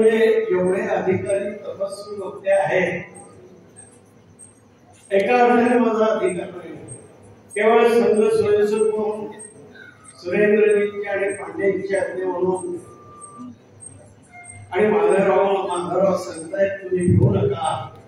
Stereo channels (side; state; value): both; identical; correlation 1.00